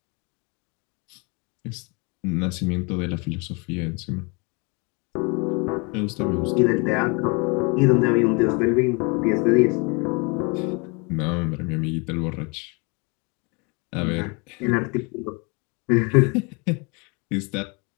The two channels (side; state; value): right; quieter; 30.9 dB